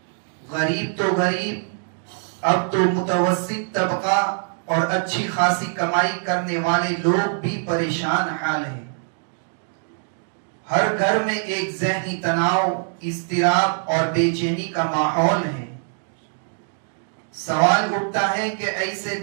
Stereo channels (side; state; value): left; silent; digital silence